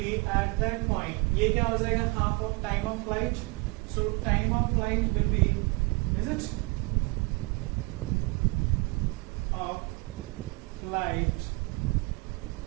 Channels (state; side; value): quieter; left; 26.7 dB